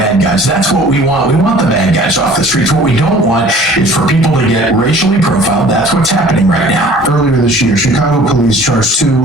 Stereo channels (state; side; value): normal; both; correlation 0.50